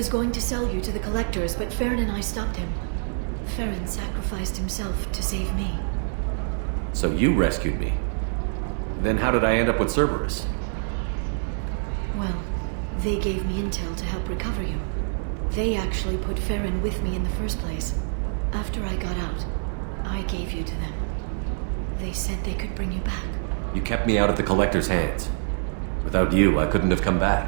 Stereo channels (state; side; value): silent; left; 61 dB below the other